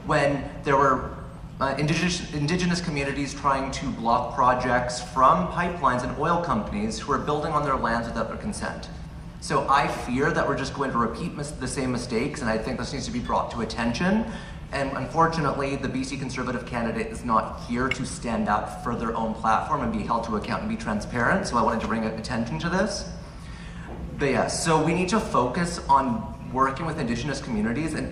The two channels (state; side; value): identical; both; correlation 1.00